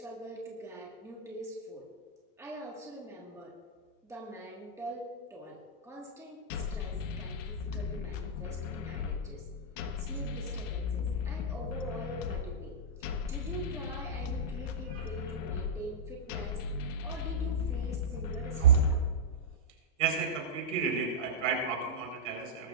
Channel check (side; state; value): both; normal; correlation -0.10